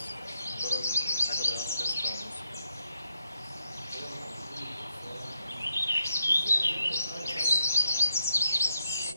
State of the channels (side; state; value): both; inverted; correlation -0.79